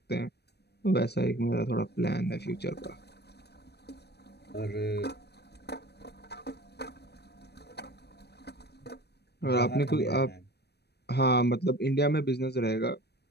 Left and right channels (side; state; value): right; late; 0.48 ms